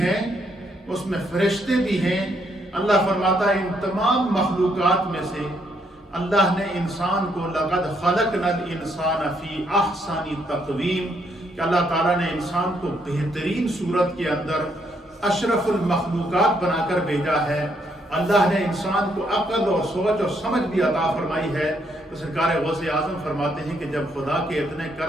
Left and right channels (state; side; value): normal; both; correlation 0.73